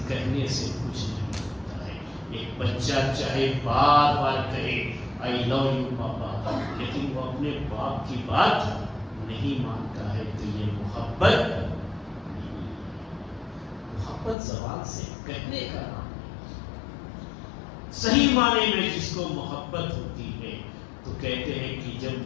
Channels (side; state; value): right; drops out; at 14.4 s